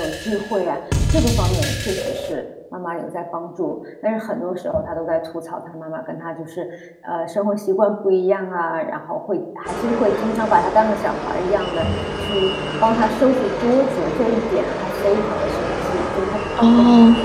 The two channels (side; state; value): both; identical; correlation 1.00